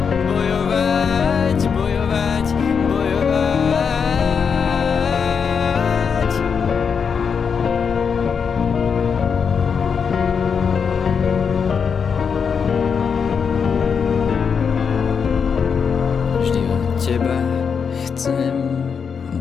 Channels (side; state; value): right; quieter; 6.3 dB